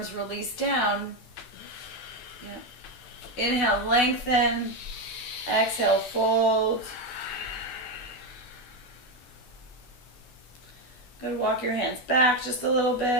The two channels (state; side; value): late; right; 12 ms